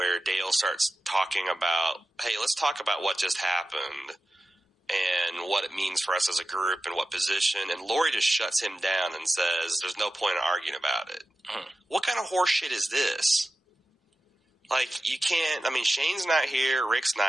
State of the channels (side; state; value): both; normal; correlation 0.93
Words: Dale starts talking about, hey, let's talk about what just happened and what it means for us as a group and what position. And Lori just shuts him down and says, there's no point in arguing about it. What kind of horse shit is this? Like, you can't, I mean, Shane's not here, Rick's